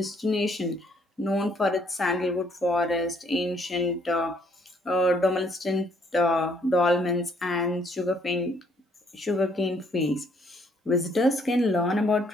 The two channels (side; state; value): both; normal; correlation 0.66